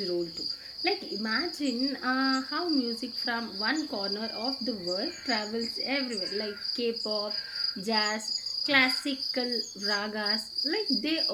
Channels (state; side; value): identical; both; correlation 1.00